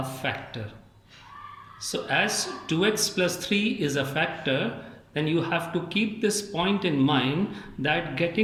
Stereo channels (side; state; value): both; identical; correlation 1.00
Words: factor. So as 2x plus 3 is a factor, then you have to keep this point in mind that